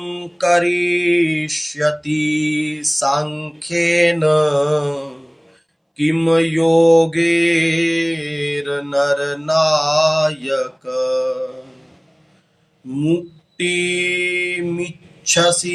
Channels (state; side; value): identical; both; correlation 1.00